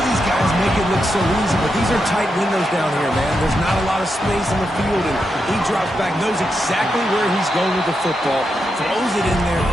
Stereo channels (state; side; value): normal; both; correlation 0.85